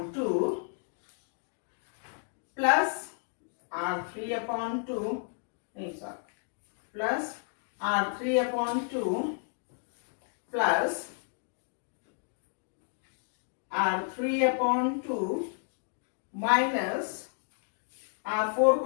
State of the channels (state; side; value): silent; right; digital silence